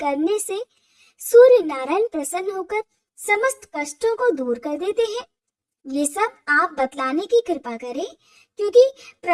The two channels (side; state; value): both; identical; correlation 1.00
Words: से सूर्य नारायण प्रसन्न होकर समस्त कष्टों को दूर कर देते हैं? ये सब आप बतलाने की कृपा करें, क्योंकि